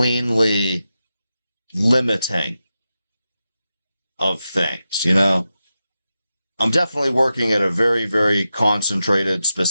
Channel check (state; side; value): inverted; both; correlation -0.91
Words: limiting of things, you know? I'm definitely working at a very, very concentrated,